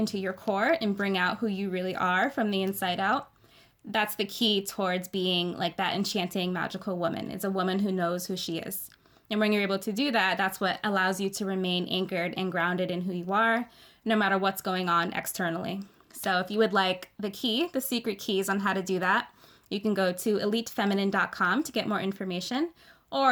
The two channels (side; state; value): both; identical; correlation 1.00